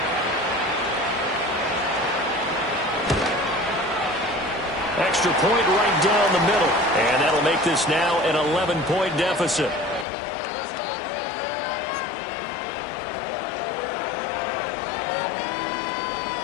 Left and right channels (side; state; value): right; drops out; at 10.1 s